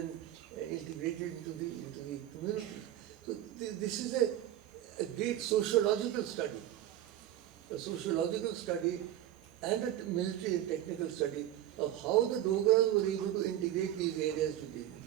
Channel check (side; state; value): left; quieter; 12.3 dB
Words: integrated into the community? So this is a great sociological study, and a military and technical study of how the Dogras were able to integrate these areas today.